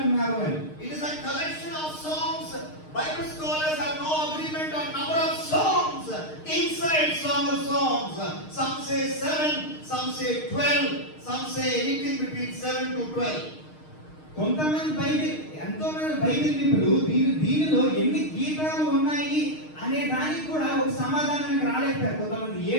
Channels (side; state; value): right; late; 6.5 ms